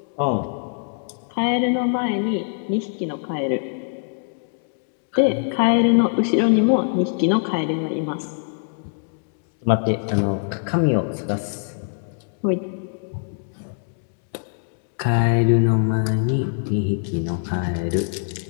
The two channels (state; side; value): silent; right; 63 dB below the other